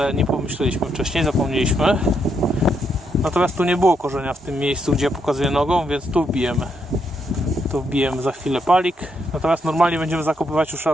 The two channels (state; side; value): normal; both; correlation 0.78